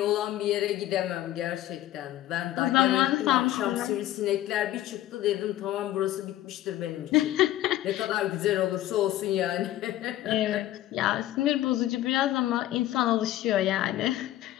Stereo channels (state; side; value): quieter; right; 14.2 dB